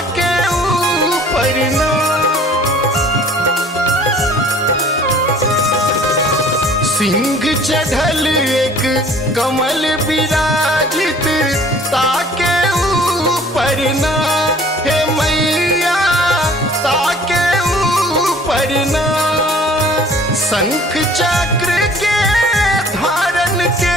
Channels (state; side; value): normal; both; correlation 0.52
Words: ऊपर ना सिंह चढ़ल एक कमल विराजित ताके ऊपर ना हे मैया ताके ऊपर ना शंख चक्र के धारण के